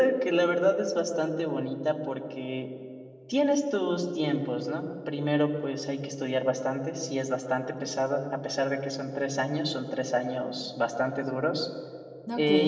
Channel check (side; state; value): both; identical; correlation 1.00